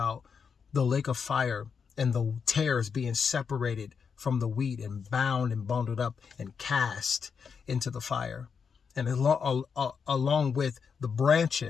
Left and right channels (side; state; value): right; quieter; 6.2 dB